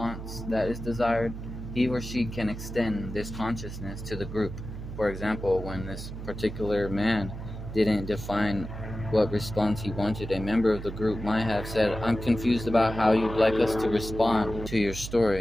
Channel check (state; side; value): noise; right; hum, 9 dB below the sound